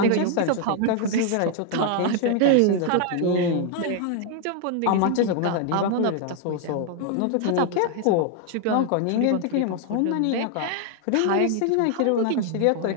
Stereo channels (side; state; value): both; different; correlation 0.00